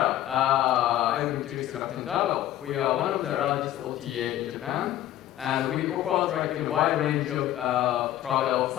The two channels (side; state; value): right; quieter; 13.1 dB